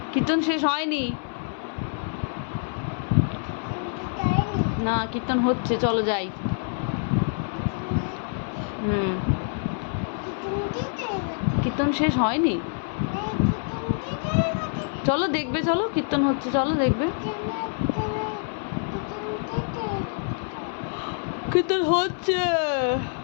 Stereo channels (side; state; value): right; silent; 61 dB below the other